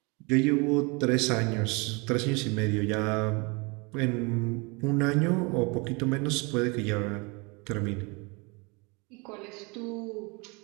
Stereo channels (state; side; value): quieter; left; 29.4 dB